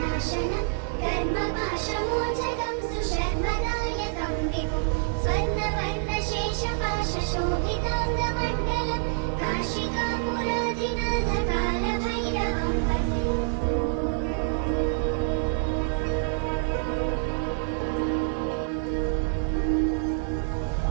नाशनं कर्मपाशमोचकं सुशर्मदायकं विभुं स्वर्णवर्णशेषपाशशोभिताङ्गमण्डलं काशिकापुराधिनाथकालभैरवं भजे।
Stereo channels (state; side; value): silent; left; digital silence